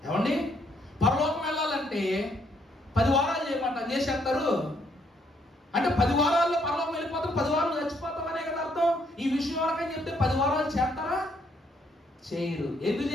ఏమండి, పరలోకం వెళ్ళాలంటే 10 వారాలు చేయమంట, చేసేస్తారు. అంటే 10 వారాల్లో పరలోకం వెళ్ళిపోతాం, 10 వారాలు చచ్చిపోతాం అనే కదా అర్థం. ఈ విషయం వరకని చెప్తే 10 వారాలు చేస్తారా? చేయరు. ఎందుకు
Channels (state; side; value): normal; both; correlation 0.71